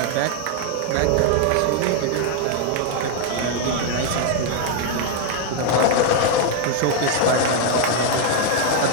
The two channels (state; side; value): different; both; correlation 0.00